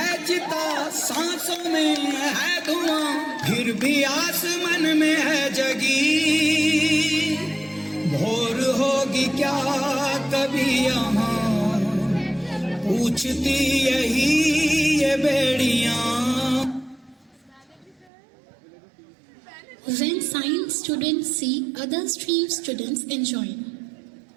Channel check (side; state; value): left; drops out; at 18.1 s